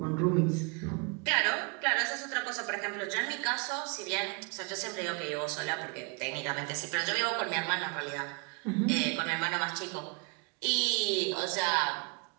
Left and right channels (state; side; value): quieter; left; 31.0 dB